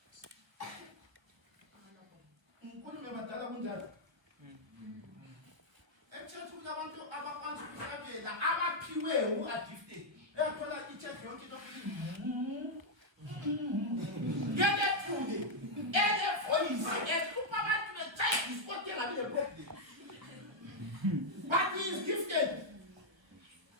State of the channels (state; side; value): late; left; 1.1 ms